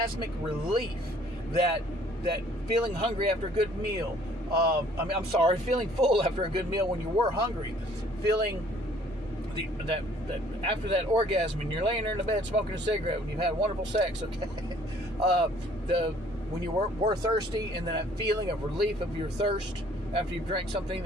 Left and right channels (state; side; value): normal; both; correlation 0.58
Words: relief, that feeling hungry after a good meal, feeling full after a good meal when you were hungry, feeling that after that orgasm and you're laying there in the bed smoking a cigarette when you've had wonderful sex, okay, when you were thirsty, and then that feeling of relief of your thirst after you've drank something